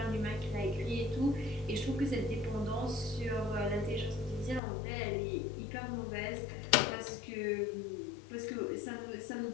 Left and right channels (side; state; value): right; drops out; at 4.6 s